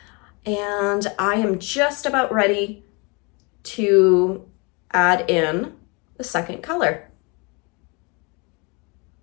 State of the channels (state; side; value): quieter; right; 30.3 dB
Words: And I am just about ready to add in the second color.